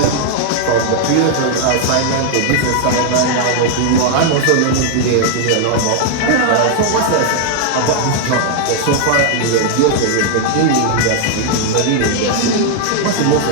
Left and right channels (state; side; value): different; both; correlation 0.00